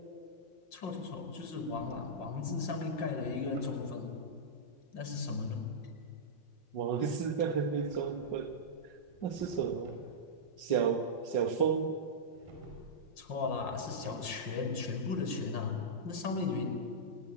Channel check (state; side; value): late; right; 5.6 ms